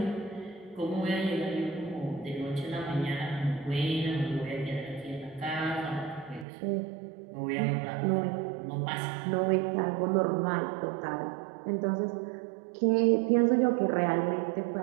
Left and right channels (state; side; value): drops out; left; at 6.5 s